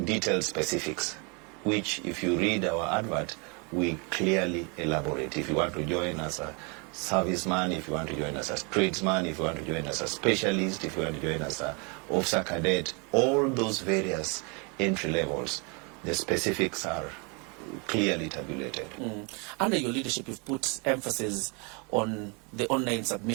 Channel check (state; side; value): quieter; left; 32.7 dB